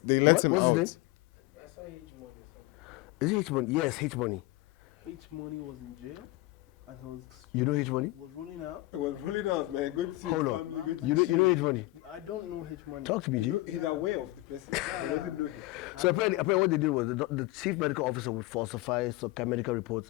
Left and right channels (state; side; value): quieter; right; 19.6 dB